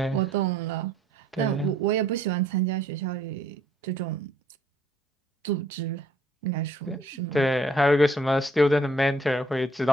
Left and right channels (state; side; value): normal; both; correlation 0.63